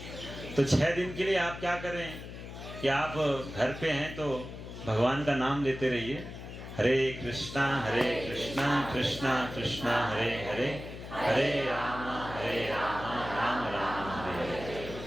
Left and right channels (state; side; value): noise; left; hum, 11 dB below the sound